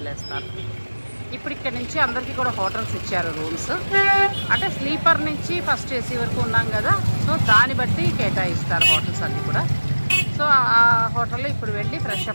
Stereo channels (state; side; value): inverted; both; correlation -1.00